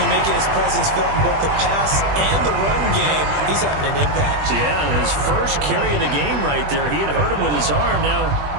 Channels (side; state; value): left; late; 20 ms